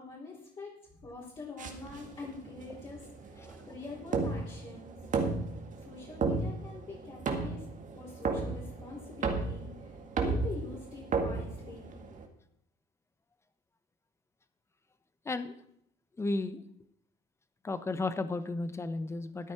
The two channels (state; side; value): normal; both; correlation 0.60